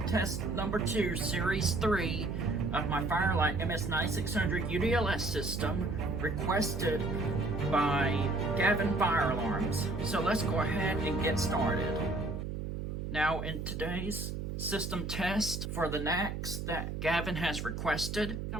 number 2, series 3 of my Fire-Lite MS-9600 UDLS system requested by Gavin Fire Alarms. So let's go ahead and get started. Now in today's system test for the NACs that Gavin has requested,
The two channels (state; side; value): noise; right; hum, 5 dB below the sound